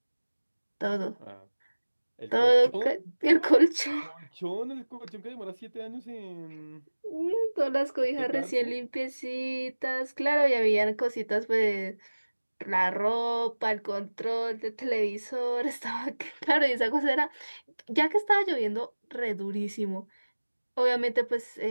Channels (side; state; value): both; inverted; correlation -1.00